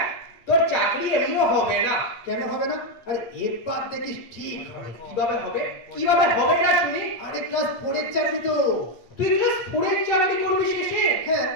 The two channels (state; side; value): late; right; 8.5 ms